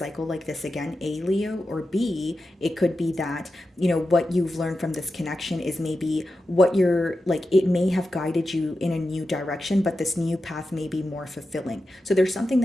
like this again, A, Leo, or B, it could be that, what you've learned from this connection is maybe what you're like, it may have guided you in a new direction, but this new path may be more fulfilling. So there's something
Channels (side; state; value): both; normal; correlation 0.91